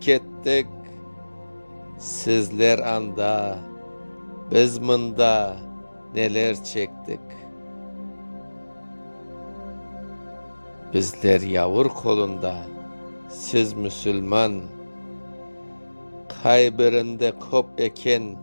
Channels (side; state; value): both; inverted; correlation -1.00